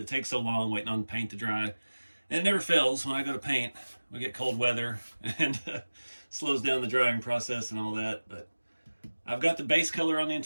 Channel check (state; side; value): inverted; both; correlation -1.00